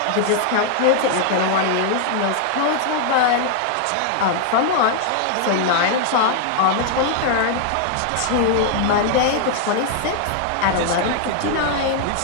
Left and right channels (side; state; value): both; different; correlation 0.00